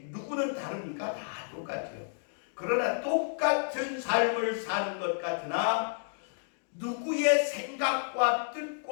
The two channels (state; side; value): silent; right; digital silence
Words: 누구는 다르니까 다 똑같아요. 그러나 똑같은 삶을 사는 것 같으나 누구의 생각과